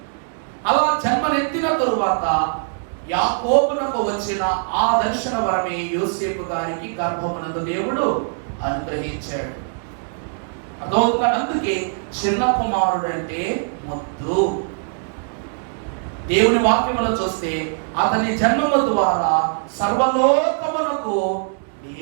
అలా జన్మనెత్తిన తరువాత యాకోబునకు వచ్చిన ఆ దర్శన వరమే యోసేపు గారికి గర్భమునందు దేవుడు అనుగ్రహించాడు. అదొక అందుకే చిన్న కుమారుడు అంటే ముద్దు. దేవుని వాక్యములో చూస్తే అతని జన్మము ద్వారా సర్వలోకమునకు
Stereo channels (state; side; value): silent; left; 65 dB below the other